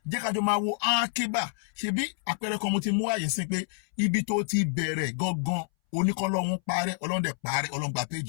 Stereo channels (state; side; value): silent; right; 59 dB below the other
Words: jẹ́ kájọ máa wo ákíbà ṣebí àpẹẹrẹ kan mo ti mú àyè sí pé ibi tó ti bẹ̀rẹ̀ gangan oníkọ́lọ́hún parẹ́ Ọlọ́run dẹ̀ parẹ́ Ọlọ́run gba